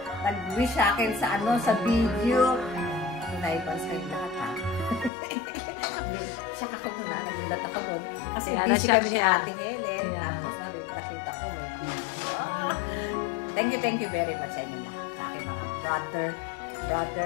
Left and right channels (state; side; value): drops out; right; at 5.1 s